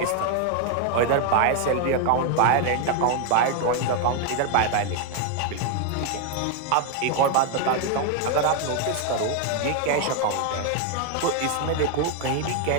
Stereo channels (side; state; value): both; different; correlation 0.01